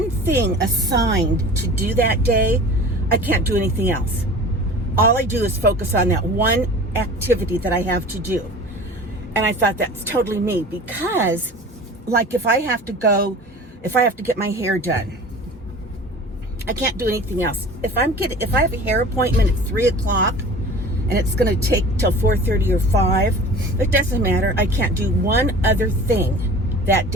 thing assigned to do that day, I can't do anything else? All I do is focus on that one activity that I have to do. And I thought that's totally me, because like if I have to get my hair done, I can't do anything else. If I have a hair appointment at 3 o'clock, and it's going to take till 4:30 or 5, it doesn't matter. I can't do one other thing that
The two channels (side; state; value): both; normal; correlation 0.40